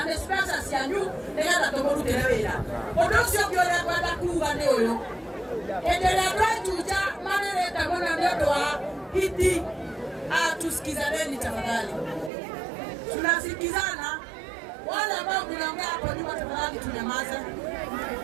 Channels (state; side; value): drops out; left; at 12.3 s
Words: nĩ mbeca cianyu nĩgetha tũmũrutĩre wĩra. Ũndũ ũcio ũngĩ ũrĩa ngwenda kuuga nĩ ũyũ. endelea tuja maneno mwana ndio wa hiti. Tusikizaneni tafadhali. Tunasikizana. Wale ambao mnaongea hapo nyuma tafadhali tunyamaze.